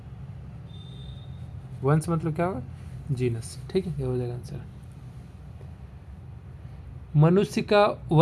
वंश मतलब क्या होगा? जीनस, ठीक है। ये हो जाएगा आंसर। मनुष्य का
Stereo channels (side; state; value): both; identical; correlation 1.00